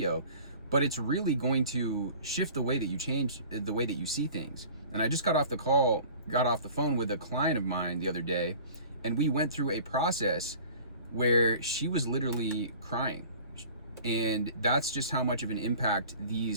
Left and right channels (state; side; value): inverted; both; correlation -0.44